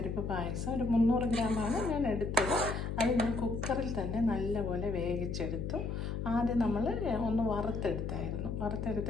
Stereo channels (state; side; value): noise; left; hum, 3 dB below the sound